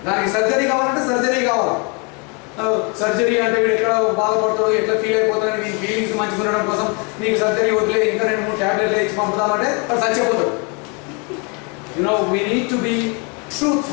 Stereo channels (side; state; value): right; quieter; 33.4 dB